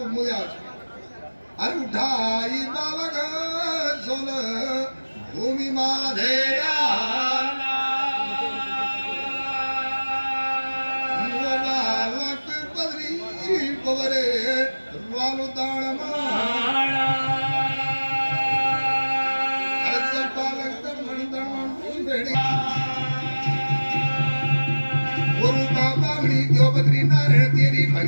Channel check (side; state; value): both; inverted; correlation -1.00